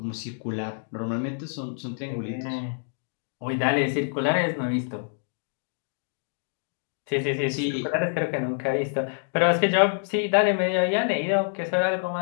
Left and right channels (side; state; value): right; silent; digital silence